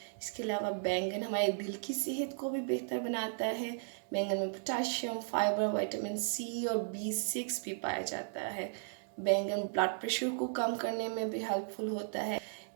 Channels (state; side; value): silent; left; 54 dB below the other